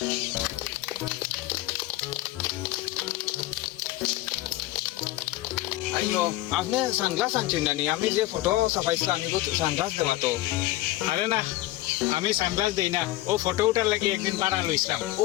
আইও আপনি সানগ্লাস আনছেন না নি আমি যে ফটো ছাপাইছিলাম আমি তো সানগ্লাস দেওয়া তো আরে না আমি সানগ্লাস দেই না ও ফটো উঠার লাগি একদিন পাড়া লইছিলাম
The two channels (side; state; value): right; quieter; 16.5 dB